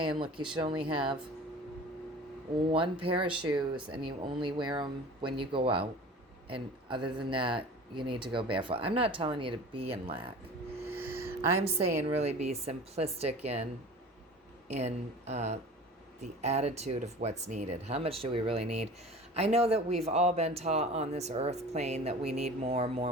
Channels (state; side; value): normal; both; correlation 0.40